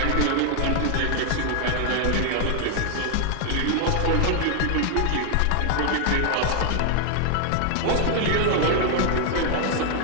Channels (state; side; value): different; both; correlation 0.00